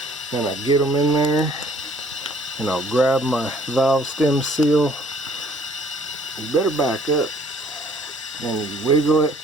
and I get them in there, and I'll grab my valve stem seal. You better back up, and you wiggle it.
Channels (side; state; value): both; normal; correlation 0.59